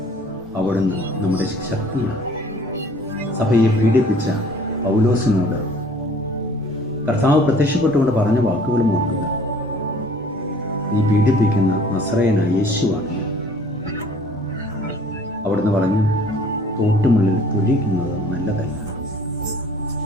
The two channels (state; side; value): normal; both; correlation 0.53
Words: അവിടുന്ന് നമ്മുടെ ശക്തിയാണ്. സഭയെ പീഡിപ്പിച്ച പൗലോസിനോട് കർത്താവ് പ്രത്യക്ഷപ്പെട്ടുകൊണ്ട് പറഞ്ഞ വാക്കുകളും ഓർക്കുക: നീ പീഡിപ്പിക്കുന്ന നസറയനായ യേശുവാണ്. അവിടുന്ന് പറഞ്ഞു, തോട്ടുമുള്ളിൽ തൊഴിക്കുന്നത് നല്ലതല്ല.